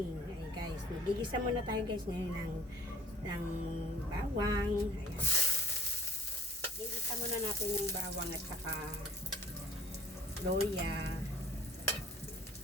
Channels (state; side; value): normal; both; correlation 0.53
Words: Ayun guys, magigisa muna tayo guys ngayon ng bawang. Ayan. Gigisa muna natin yung bawang at saka loya.